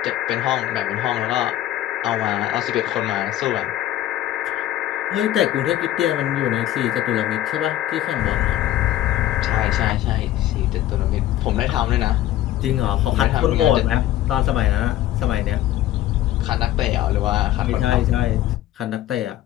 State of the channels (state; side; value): quieter; right; 13.5 dB